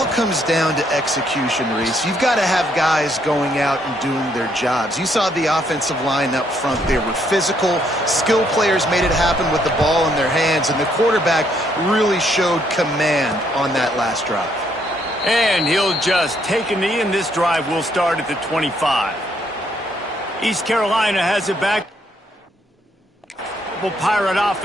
comes down to execution, Reese. You've got to have guys going out and doing their jobs. You saw the offensive line up front. They were physical. Skill players made it happen with the ball in their hands, and the quarterback really showed command on that last drive. And he'll just take a knee, and this drive will start at the 25. East Carolina has it back. Pirate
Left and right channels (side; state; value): both; normal; correlation 0.71